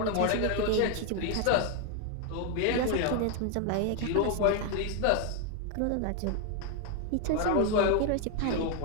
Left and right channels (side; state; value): both; different; correlation 0.00